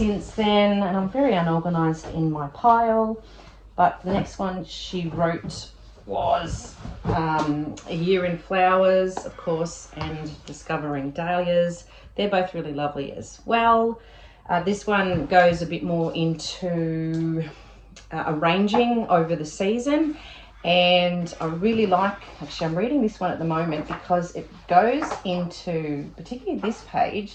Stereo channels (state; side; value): identical; both; correlation 1.00